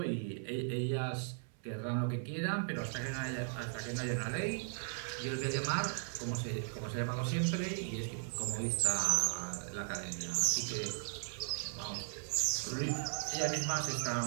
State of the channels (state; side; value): silent; left; 53 dB below the other